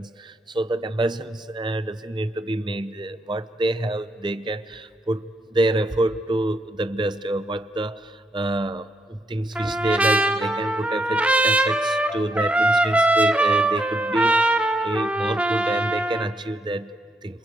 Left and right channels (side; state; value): both; normal; correlation 0.77